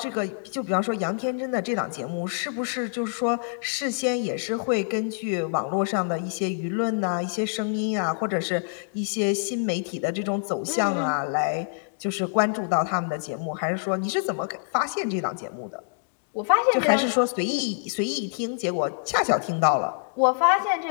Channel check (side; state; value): right; silent; digital silence